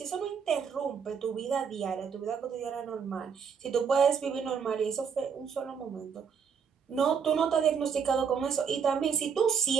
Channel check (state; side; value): quieter; left; 6.6 dB